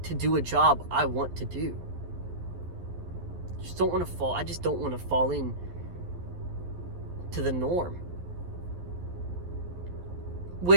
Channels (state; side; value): late; left; 11 ms